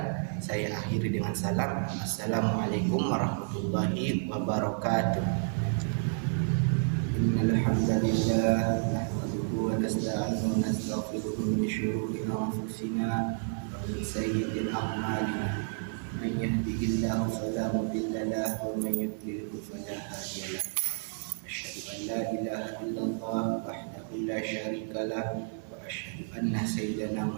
Saya akhiri dengan salam. Assalamualaikum warahmatullahi wabarakatuh. Innal hamdalillah nahmaduhu wa nasta'inuhu wa nastaghfiruhu min shururi anfusina wa min sayyi'ati a'malina. Man yahdihillahu fala mudilla lahu wa man yudlilhu fala hadiya lahu. Asyhadu an la ilaha illallah wahdahu la syarika lahu wa asyhadu anna sayyidana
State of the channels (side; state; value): left; silent; digital silence